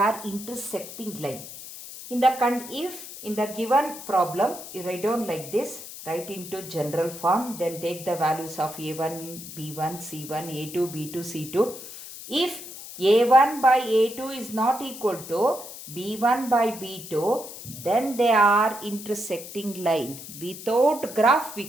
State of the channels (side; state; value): left; noise; hiss, 13 dB below the sound